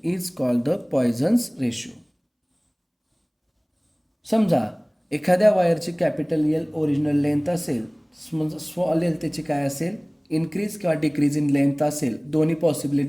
is called the Poisson's ratio. समजा एखाद्या वायरची कॅपिटल एल ओरिजिनल लेंथ असेल, स्मॉल एल त्याची काय असेल, इन्क्रीज किंवा डिक्रीज इन लेंथ असेल. दोन्ही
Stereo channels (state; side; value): identical; both; correlation 1.00